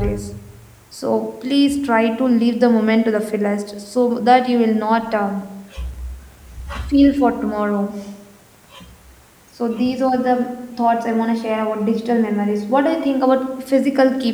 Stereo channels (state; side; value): identical; both; correlation 1.00